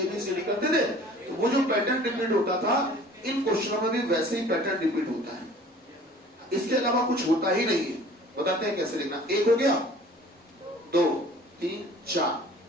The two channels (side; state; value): both; normal; correlation 0.48